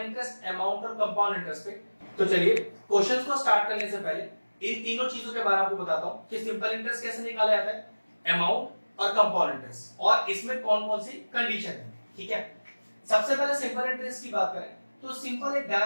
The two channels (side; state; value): both; inverted; correlation -1.00